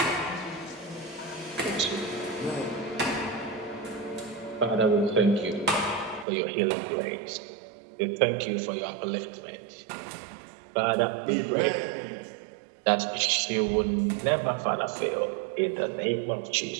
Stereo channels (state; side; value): drops out; left; at 6.2 s